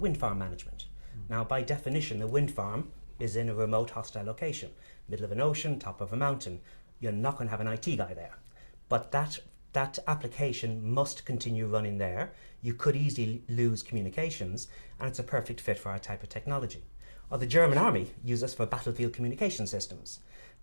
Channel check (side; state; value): both; inverted; correlation -1.00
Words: farm management. Now by definition, a wind farm is in a remote hostile location, middle of an ocean, top of a mountain. You're not going to have an IT guy there. But that application must continue running there. You could easily lose communications, and it's a perfect fit for our type of technology. Or the German army uses us for battlefield communication systems.